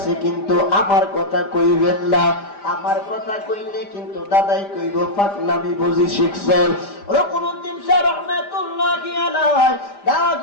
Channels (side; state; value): right; late; 5.0 ms